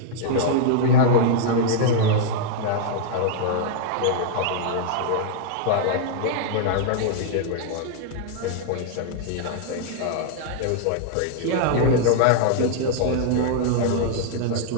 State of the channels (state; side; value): different; both; correlation -0.01